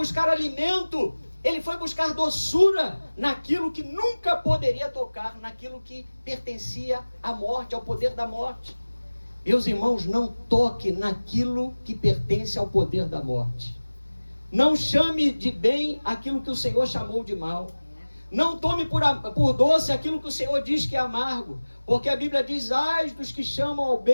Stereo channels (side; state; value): both; inverted; correlation -1.00